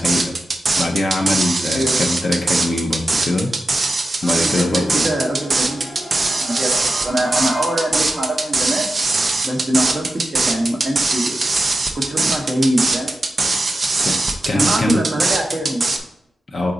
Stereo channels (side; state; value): both; normal; correlation 0.91